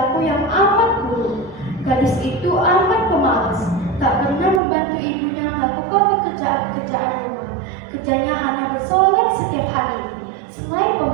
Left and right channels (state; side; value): drops out; left; at 4.6 s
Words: yang amat buruk. Gadis itu amat pemalas, tak pernah membantu ibunya melakukan pekerjaan-pekerjaan rumah. Kerjanya hanya bersolek setiap hari. Selain